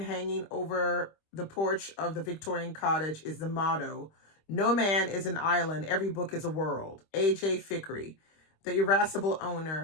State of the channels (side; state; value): right; late; 25 ms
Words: over the porch of the Victorian cottage is the motto, "No man is an island, every book is a world." A.J. Fikry, the irascible